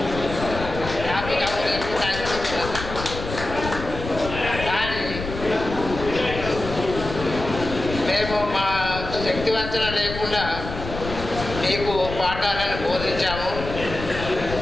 హ్యాపీ అనిపిస్తున్నది. కానీ మేము మా శక్తివంచన లేకుండా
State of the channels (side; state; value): left; noise; rumble, 8 dB below the sound